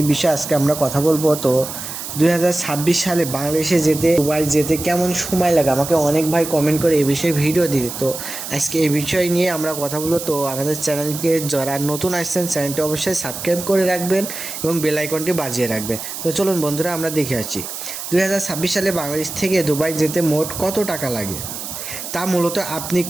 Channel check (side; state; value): right; noise; hiss, 8 dB below the sound